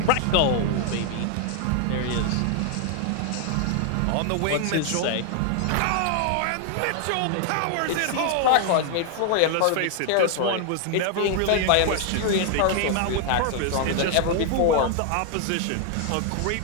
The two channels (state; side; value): different; both; correlation 0.00